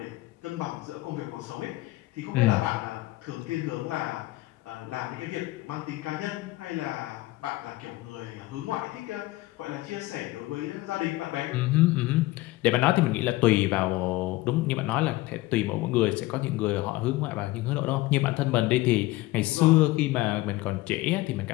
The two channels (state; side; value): quieter; right; 18.7 dB